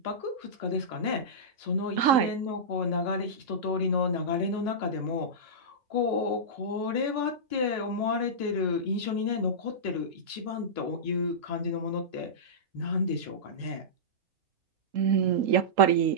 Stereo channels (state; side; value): late; left; 3.8 ms